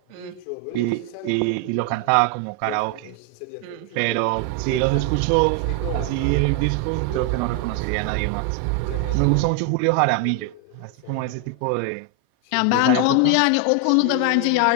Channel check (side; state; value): both; different; correlation 0.01